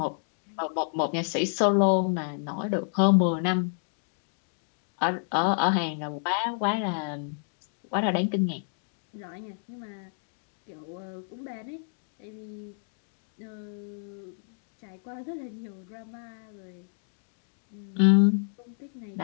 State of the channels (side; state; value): right; silent; digital silence